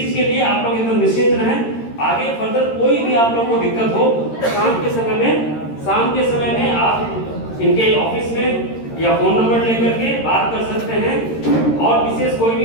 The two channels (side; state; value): right; late; 13 ms